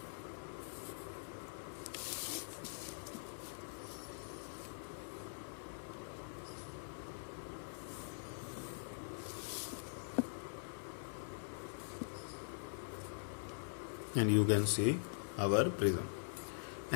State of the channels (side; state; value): right; silent; digital silence